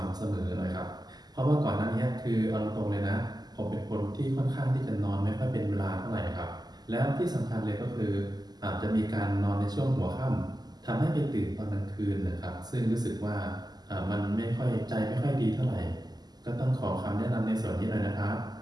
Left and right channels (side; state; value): left; late; 0.20 ms